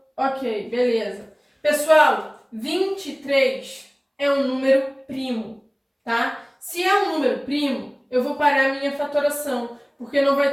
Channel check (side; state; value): both; identical; correlation 1.00